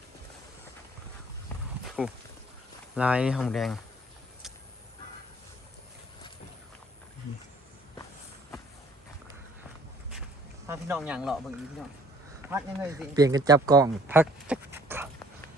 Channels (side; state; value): both; normal; correlation 0.56